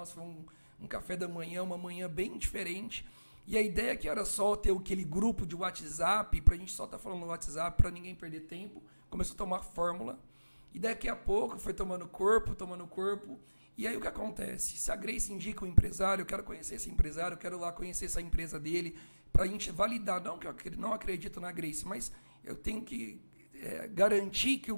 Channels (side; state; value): both; inverted; correlation -1.00